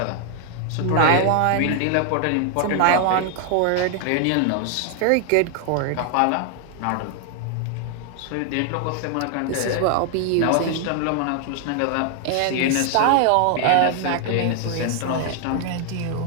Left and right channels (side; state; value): both; different; correlation 0.00